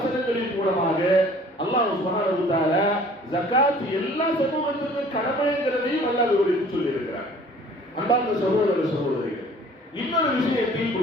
மூலமாக அல்லாஹ் சுப்ஹானஹு வ தஆலா ஜகாத் எல்லா சமூகத்திற்கும் கடமைங்கிறதையும் அல்லாஹ் விவரித்து சொல்லி இருக்கிறார். அன்பார்ந்த சகோதர சகோதரிகள், இன்னொரு விஷயத்தை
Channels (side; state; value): both; normal; correlation 0.51